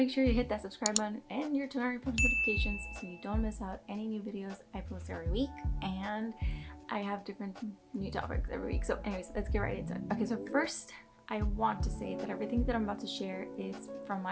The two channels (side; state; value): both; identical; correlation 1.00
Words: sure you hit that subscribe button and your turn on your post notifications so you don't miss out any new videos I post every week. And I have different new topics every week. So anyways, let's get right into it. Okay, so first I want to say that everything that I'm about to share is from